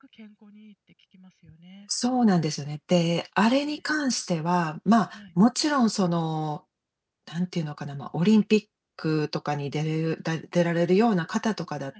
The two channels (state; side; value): identical; both; correlation 1.00